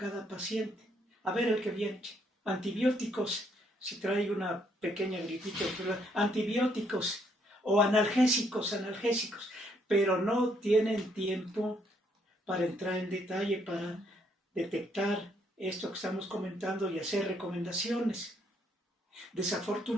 paciente. A ver el que viene, antibióticos, si trae una pequeña gripita, antibióticos o analgésicos, pero no tienen tiempo para entrar en detalle, para detectar esto que estamos comentando y hacer recomendaciones.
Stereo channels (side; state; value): both; normal; correlation 0.70